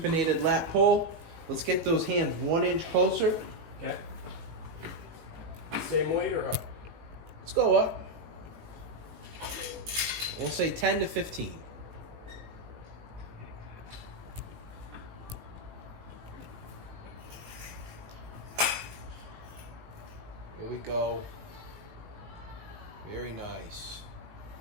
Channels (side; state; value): left; late; 19 ms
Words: lat pull. Let's get those hands 1 inch closer. Okay. Same weight or up? Let's go up. We'll say 10 to 15. Here we go. Very nice.